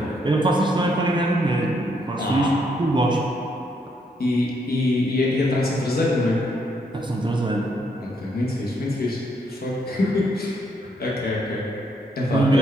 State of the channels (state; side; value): normal; both; correlation 0.73